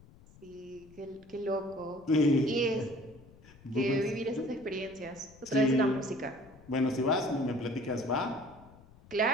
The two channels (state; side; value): noise; left; rumble, 24 dB below the sound